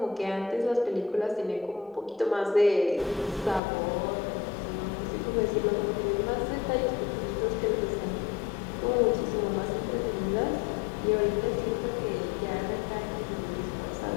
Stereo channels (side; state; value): right; drops out; at 3.6 s